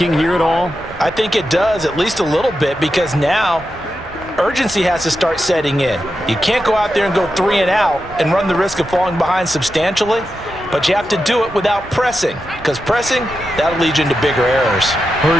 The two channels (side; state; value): both; normal; correlation 0.89